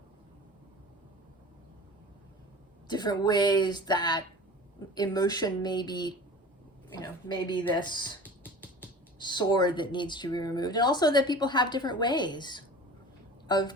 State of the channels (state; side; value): normal; both; correlation 0.39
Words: Different ways that emotion may be, maybe this sword that needs to be removed. And also that people have different ways